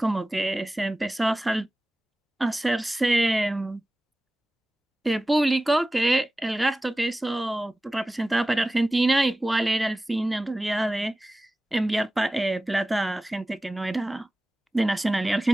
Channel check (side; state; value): both; normal; correlation 0.97